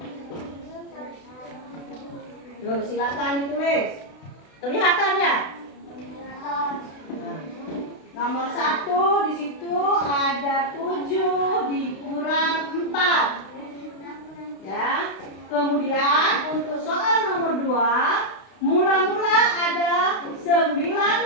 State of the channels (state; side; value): late; right; 32 ms